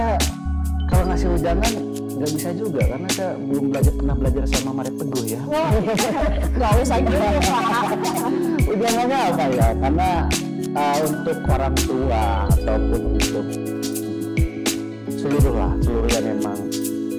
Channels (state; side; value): identical; both; correlation 1.00